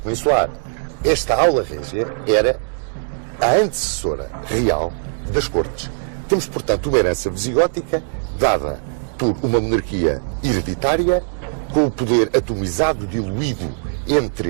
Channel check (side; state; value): left; silent; digital silence